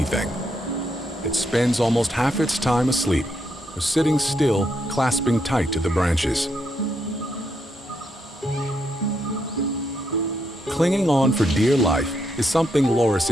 It spends almost half its time asleep, or sitting still, clasping tight to the branches. Clinging on for dear life is something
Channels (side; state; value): both; normal; correlation 0.78